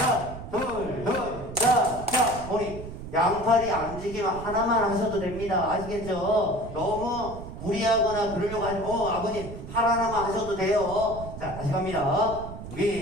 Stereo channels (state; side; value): noise; right; rumble, 11 dB below the sound